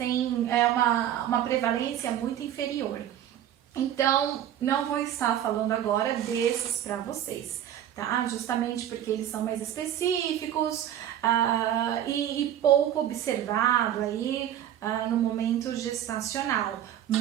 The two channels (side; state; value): left; quieter; 11.0 dB